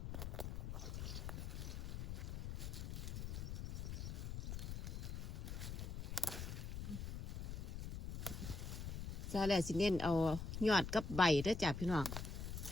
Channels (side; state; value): left; noise; rumble, 5 dB below the sound